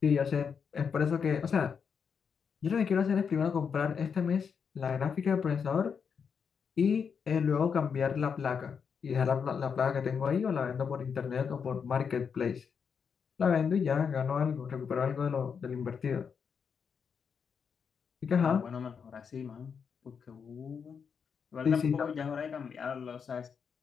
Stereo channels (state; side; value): quieter; right; 6.5 dB